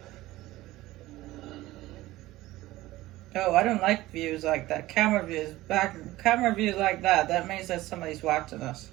Oh, I don't like views like that. Camera views. Camera views like that. That means that somebody's watching us.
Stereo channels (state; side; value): quieter; left; 17.4 dB